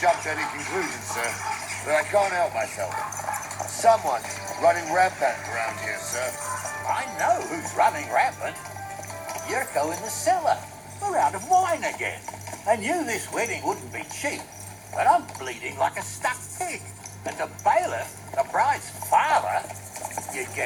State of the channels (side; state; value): both; identical; correlation 1.00